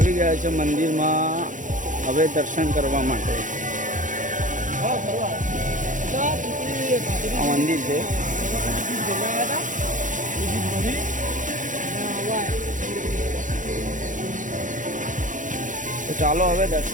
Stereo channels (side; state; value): left; late; 0.37 ms